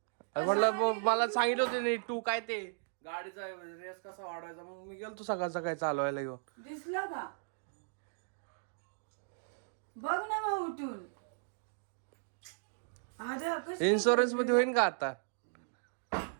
अरे म्हटलं मला सांगितलं होते नाही तू काय ते गाडीचा रेस कसा वाढवायचा. मग मी गेलतो सकाळ सकाळी चालवायला घेऊन. दिसलं का? बघ ना मग उठून. इन्शुरन्स मध्ये होईल का आता?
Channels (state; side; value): silent; left; digital silence